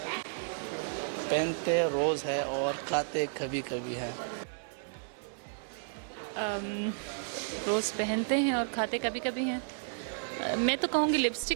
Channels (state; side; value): silent; left; digital silence